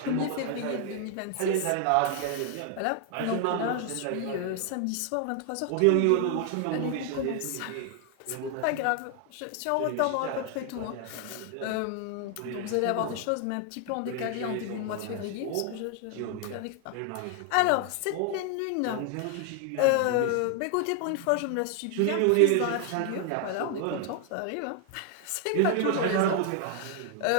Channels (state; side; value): different; both; correlation 0.00